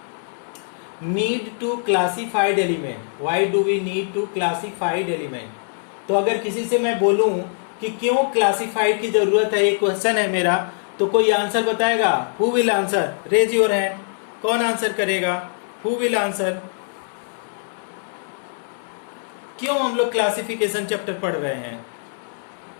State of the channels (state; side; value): silent; right; digital silence